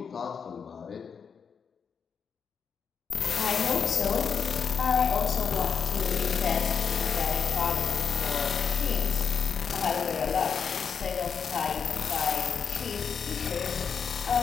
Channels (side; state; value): right; quieter; 6.5 dB